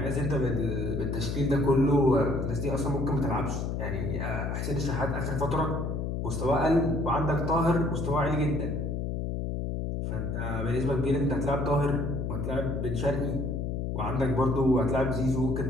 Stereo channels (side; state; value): left; noise; hum, 2 dB below the sound